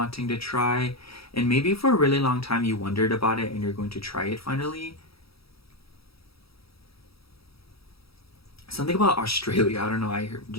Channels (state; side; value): late; right; 0.76 ms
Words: to try. And maybe for a really long time you wondered about it and you're going to try it finally. Something about Australia. I don't know.